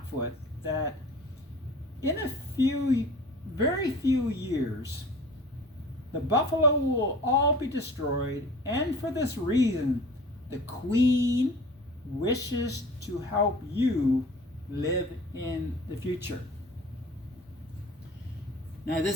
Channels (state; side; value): normal; both; correlation 0.43